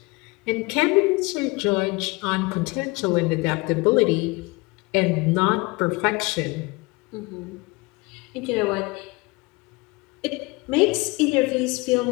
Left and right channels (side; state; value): right; quieter; 25.2 dB